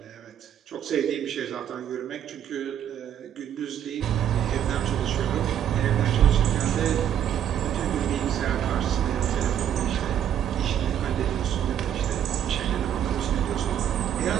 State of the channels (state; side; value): quieter; left; 9.9 dB